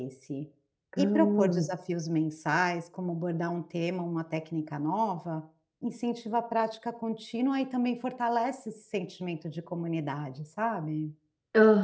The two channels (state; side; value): identical; both; correlation 1.00